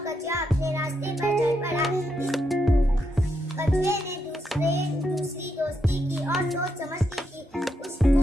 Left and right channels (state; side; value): normal; both; correlation 0.81